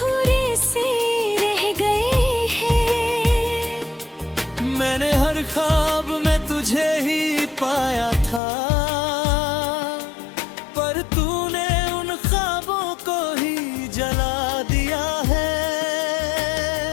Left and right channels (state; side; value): drops out; right; at 8.4 s